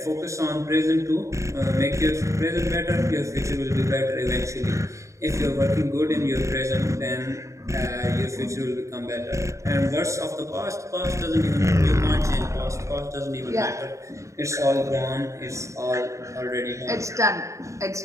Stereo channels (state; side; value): late; left; 0.15 ms